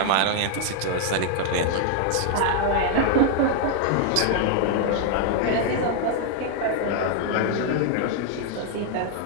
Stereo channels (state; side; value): different; both; correlation 0.00